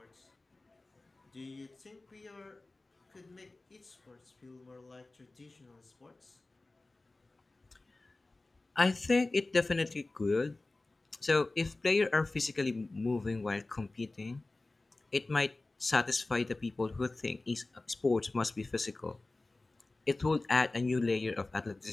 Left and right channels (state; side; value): quieter; right; 3.1 dB